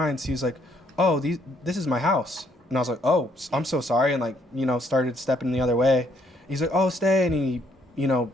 He's like, "Oh, this is my house." And I was like, "Oh, I'm so sorry," and like, started stepping the other way. He's like, "Oh, stay," and he,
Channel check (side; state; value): both; normal; correlation 0.69